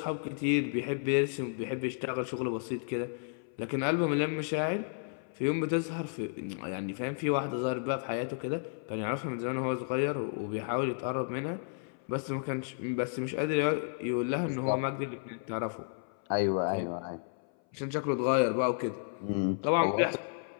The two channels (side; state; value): right; silent; 56 dB below the other